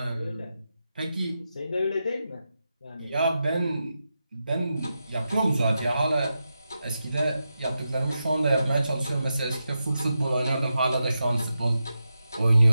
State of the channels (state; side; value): inverted; both; correlation -0.89